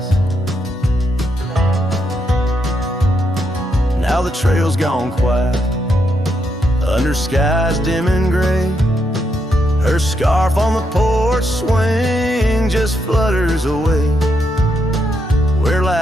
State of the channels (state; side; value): normal; both; correlation 0.79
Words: Now the trail's gone quiet under skies dim and gray. Her scarf on the porch swing just flutters away. Where